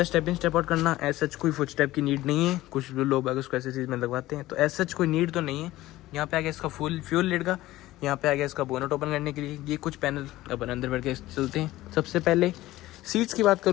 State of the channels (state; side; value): quieter; right; 16.6 dB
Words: स्टेप इन स्टेप आउट करना एज सच कोई फुट स्टेप की नीड नहीं है, कुछ लोग अगर उसको ऐसी चीज़ में लगवाते हैं, तो एज सच कोई नीड तो नहीं है। यहाँ पे आ गया इसका फुल फ्यूल लिड का, यहाँ पे आ गया इसका बोनट ओपन करने के लिए, ये कुछ पैनल अपन अंदर बैठ के चलते हैं। सबसे पहले सीट्स की बात